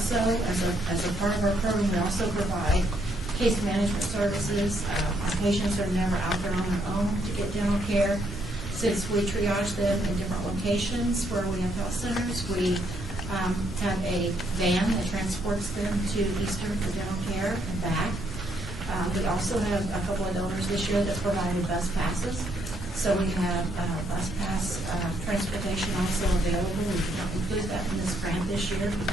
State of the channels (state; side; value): normal; both; correlation 0.72